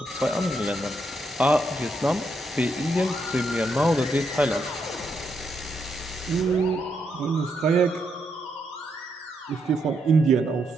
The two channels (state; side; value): normal; both; correlation 0.79